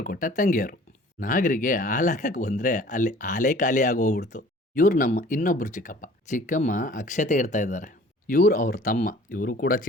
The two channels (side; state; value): both; normal; correlation 0.50